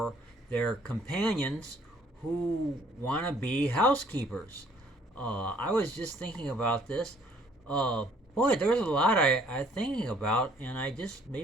their companions who want to be housekeepers. I was just thinking about this. Uh, Boy, there's a lot I'm thinking about, and I just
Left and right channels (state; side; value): normal; both; correlation 0.61